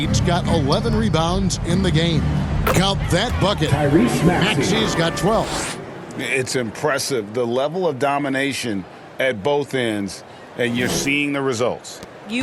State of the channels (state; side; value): identical; both; correlation 1.00